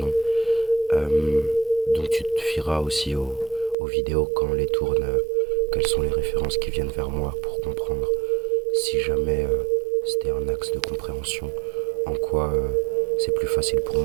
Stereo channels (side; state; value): left; drops out; at 3.8 s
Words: Euh, donc tu te fieras aussi aux vidéos quand on les tourne, quelles sont les références qui viennent vers moi pour comprendre si jamais c'était un axe de compréhension, en quoi c'est plus facile pour